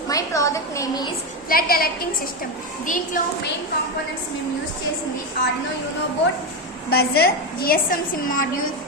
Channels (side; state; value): both; normal; correlation 0.12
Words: My project name is flood alerting system. దీంట్లో మెయిన్ కాంపోనెంట్స్ మేము యూజ్ చేసింది Arduino Uno board, buzzer, GSM SIM module,